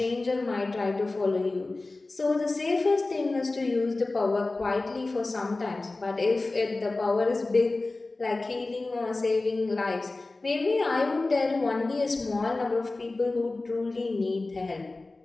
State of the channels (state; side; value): quieter; right; 3.2 dB